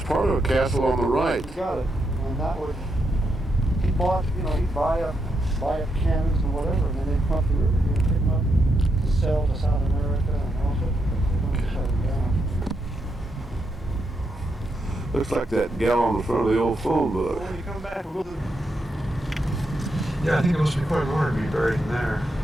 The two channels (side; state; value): both; normal; correlation 0.82